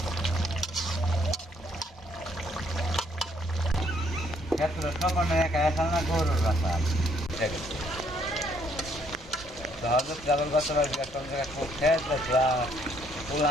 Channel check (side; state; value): both; normal; correlation 0.68